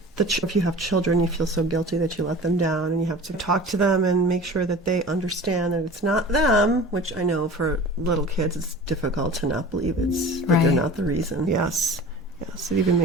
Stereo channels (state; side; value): normal; both; correlation 0.40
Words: if you have children, you feel so guilty that you let them down, and you have to talk to them and make sure that they understand that it's not them, which I know for little kids it's difficult to not believe that they're not the reason. Yes. It even